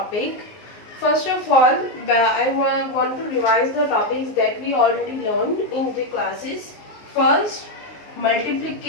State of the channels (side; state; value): right; late; 19 ms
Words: First of all, I want to revise the topics that we already learned in the classes. First,